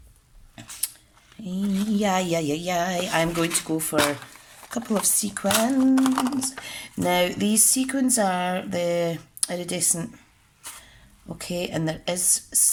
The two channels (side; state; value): both; identical; correlation 1.00